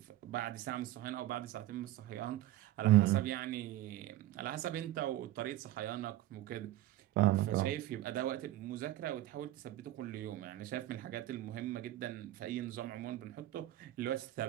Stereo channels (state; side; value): quieter; left; 14.7 dB